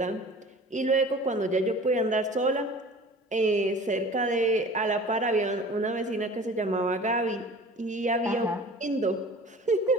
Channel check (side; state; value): both; normal; correlation 0.43